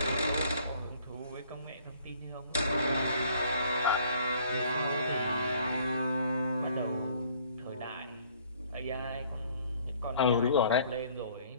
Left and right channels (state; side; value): inverted; both; correlation -0.58